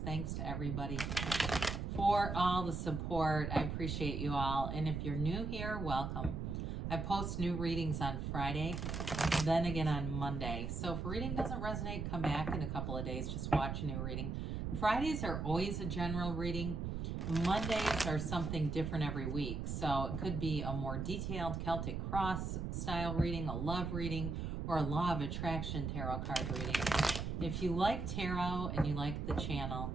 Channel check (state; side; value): noise; right; rumble, 3 dB below the sound